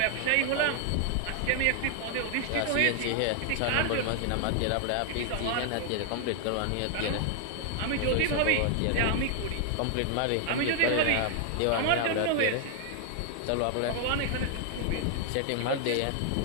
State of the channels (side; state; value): both; different; correlation 0.00